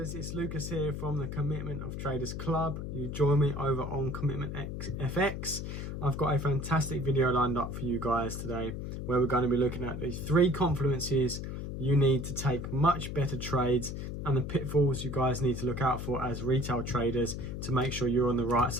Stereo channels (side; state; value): left; noise; hum, 6 dB below the sound